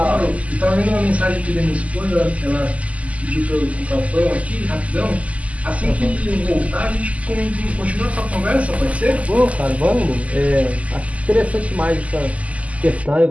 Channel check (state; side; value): late; left; 0.069 ms